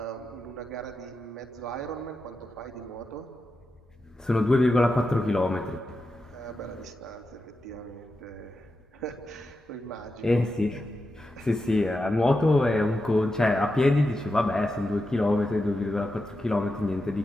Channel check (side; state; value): both; normal; correlation 0.89